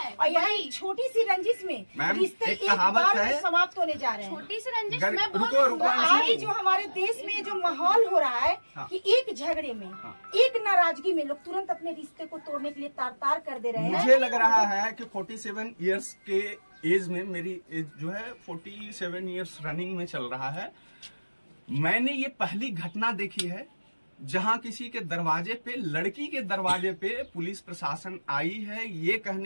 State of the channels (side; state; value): both; inverted; correlation -1.00